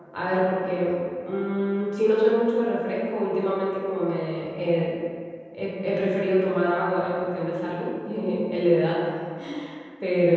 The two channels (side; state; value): both; identical; correlation 1.00